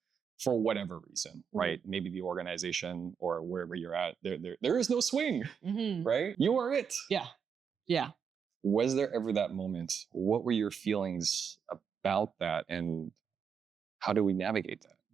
For whatever reason, right? Maybe the organization or wherever you're at, there is no swing, right? You are it. Yeah. Yeah. Was there ever that moment? What were your feelings about that? And how do we navigate that?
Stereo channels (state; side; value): quieter; left; 6.9 dB